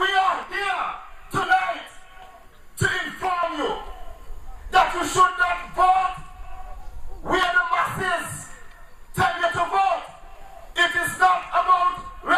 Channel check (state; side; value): identical; both; correlation 1.00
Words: are here tonight to inform you that you should not vote where the masses tell you to vote. It is not about